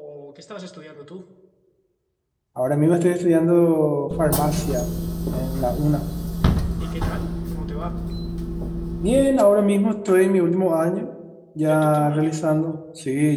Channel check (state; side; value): identical; both; correlation 1.00